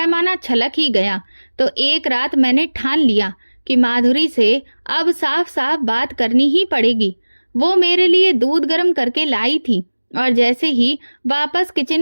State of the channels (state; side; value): inverted; both; correlation -1.00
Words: छलक ही गया। तो एक रात मैंने ठान लिया कि माधुरी से अब साफ साफ बात करनी ही पड़ेगी। वो मेरे लिए दूध गर्म करके लाई थी और जैसे ही वापस